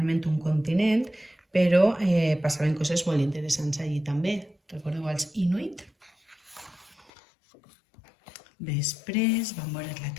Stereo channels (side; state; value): right; drops out; at 7.1 s